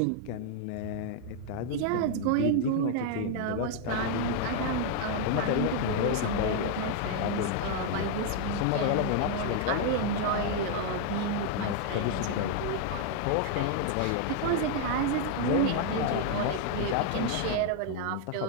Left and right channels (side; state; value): both; different; correlation 0.00